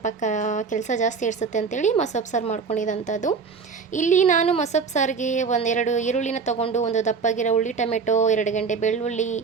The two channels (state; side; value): quieter; left; 5.3 dB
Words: ಕೆಲಸ ಜಾಸ್ತಿ ಇಡಿಸುತ್ತೆ ಅಂತೇಳಿ ಮೊಸಪ್ಪು ಸಾರು ಮಾಡ್ಕೊಂಡಿದ್ದಂಥದ್ದು. ಇಲ್ಲಿ ನಾನು ಮೊಸಪ್ಪು ಸಾರಿಗೆ 1-2 ಈರುಳ್ಳಿನ ತೊಗೊಂಡು, ಒಂದು ದಪ್ಪಗಿರೋ ಉಳ್ಳಿ ಟೊಮೆಟೊ, 2 ಗೆಡ್ಡೆ ಬೆಳ್ಳುಳ್ಳಿ